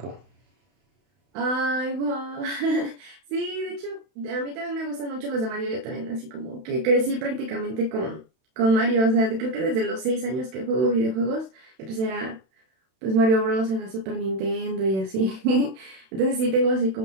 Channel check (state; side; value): late; left; 31 ms